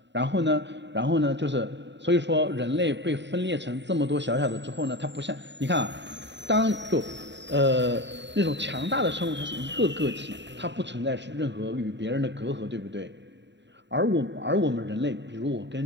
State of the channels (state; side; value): late; left; 0.52 ms